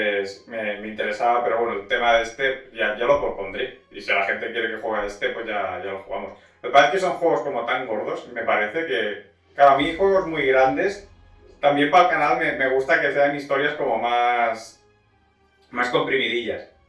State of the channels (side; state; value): both; identical; correlation 1.00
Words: me interesaba, pero bueno, el tema de este ya lo propondré. Y si la gente quiere que juegue a este, pues ya lo jugamos. Lo que pasa es que son juegos como tan gordos, me parece que... Claro, a mí juegos muy grandes... También para el canal me gusta que sean historias como más comprimidillas.